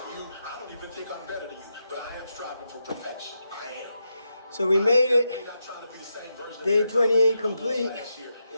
you. I don't even think I'm better than you, but I am striving for perfection. I am. So we made it. Day 28 complete.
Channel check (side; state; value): both; inverted; correlation -0.85